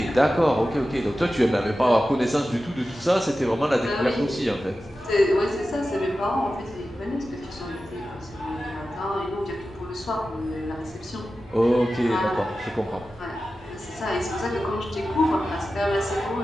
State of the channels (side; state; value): both; normal; correlation 0.94